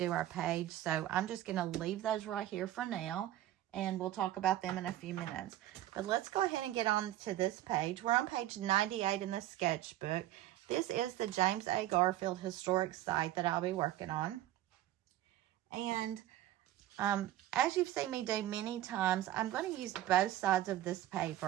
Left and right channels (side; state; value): left; quieter; 13.8 dB